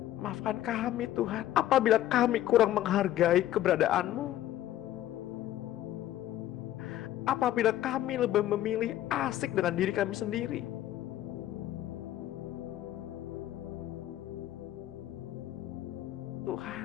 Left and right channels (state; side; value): quieter; right; 13.2 dB